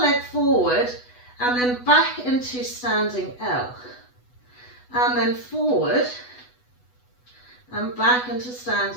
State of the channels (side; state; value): right; late; 8.1 ms